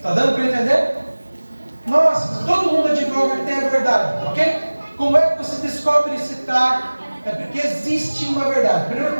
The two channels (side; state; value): both; inverted; correlation -1.00